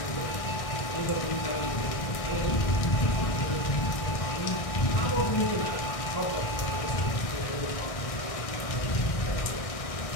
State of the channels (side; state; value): right; late; 1.6 ms